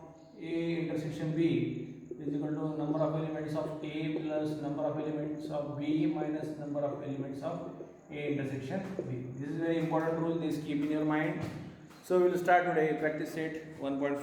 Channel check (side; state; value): both; identical; correlation 1.00